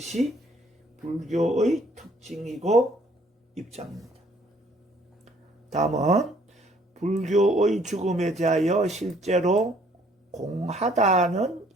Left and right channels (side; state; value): both; normal; correlation 0.61